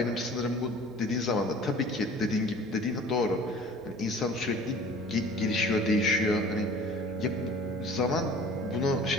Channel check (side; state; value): both; normal; correlation 0.47